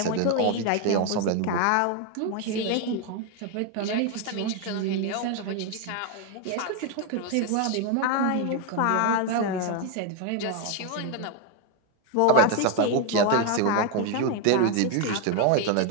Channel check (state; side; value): different; both; correlation 0.01